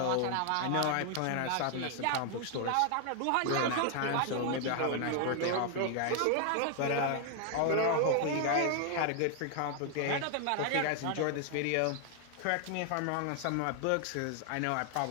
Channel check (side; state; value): both; different; correlation 0.00